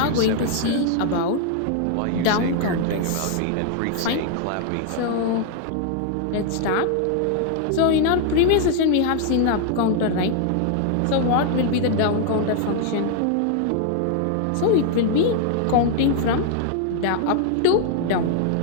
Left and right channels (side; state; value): both; different; correlation 0.00